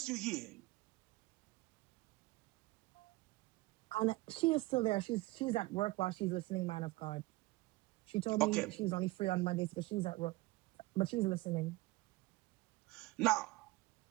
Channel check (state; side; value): quieter; left; 20.8 dB